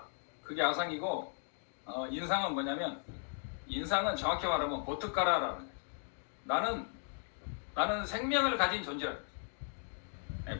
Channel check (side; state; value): right; silent; 53 dB below the other